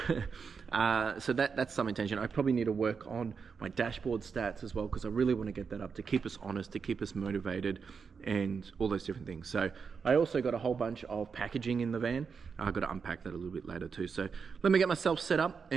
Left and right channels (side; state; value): left; quieter; 5.7 dB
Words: So that's some intention. I probably need to work on my dashboard stats as well, because I really want to get that up to keep us honest, to keep us motivated, and all those different things. So I also got a whole bunch of packaging in the van. I've got to unpack that a little bit later too. So let me get myself set up,